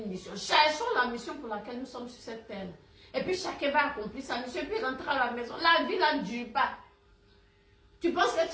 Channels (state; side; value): identical; both; correlation 1.00